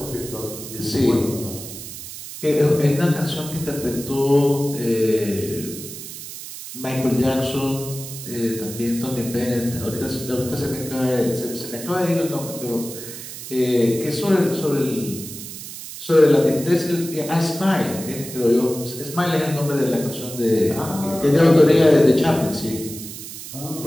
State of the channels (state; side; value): noise; right; hiss, 11 dB below the sound